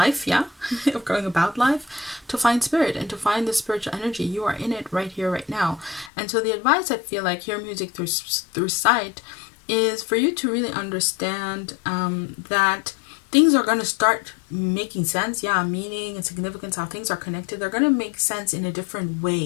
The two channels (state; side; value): drops out; right; at 6.1 s